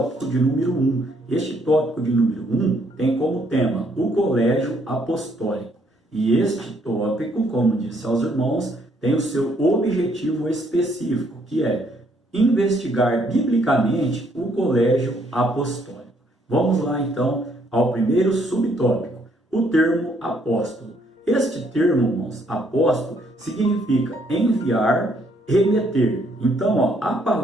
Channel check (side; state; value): both; normal; correlation 0.69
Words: de número 1. Este tópico de número 1 tem como tema o colégio apostólico. E este tópico, como disse aos irmãos, tem o seu objetivo específico, que é investigar biblicamente o colégio apostólico. Vamos lá, então, ao primeiro subtópico, o termo apóstolo. Este termo, irmãos, apóstolo, significa enviar, remeter. Então, a